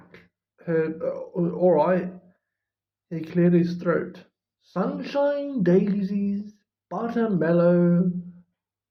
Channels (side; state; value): both; identical; correlation 1.00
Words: All right. He cleared his throat. Sunshine, daisies, buttermellow.